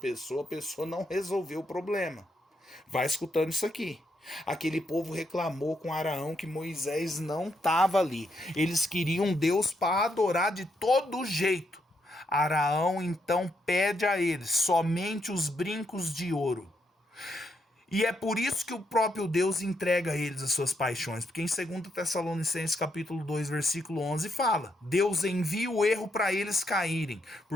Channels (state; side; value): normal; both; correlation 0.78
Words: a pessoa não resolveu o problema. Vai escutando isso aqui. Aquele povo reclamou com Araão que Moisés não estava ali. Eles queriam Deus para adorar de todo jeito. Araão então pede a eles somente os brincos de ouro. E é por isso que o próprio Deus entrega a eles as suas paixões. Porque em 2 Tessalonicenses capítulo 2, versículo 11 fala: Deus envia o erro para eles caírem,